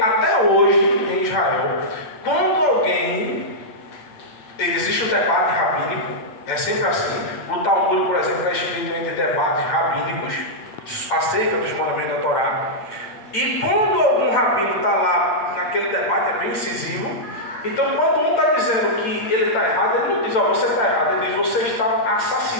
hoje, em Israel, quando alguém, existe um debate rabínico, é sempre assim. O Talmud, por exemplo, é escrito entre debates rabínicos acerca dos mandamentos da Torá. E quando algum rabino está lá naquele debate, é bem incisivo. Então, quando um está dizendo que ele está errado, ele não diz, ó, você está errado, ele diz, você está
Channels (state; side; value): late; right; 8.9 ms